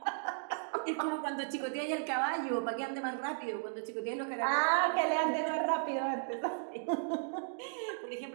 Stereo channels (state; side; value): silent; left; digital silence